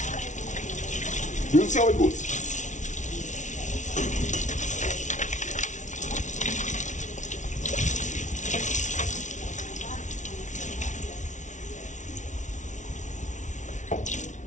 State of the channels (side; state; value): right; late; 0.36 ms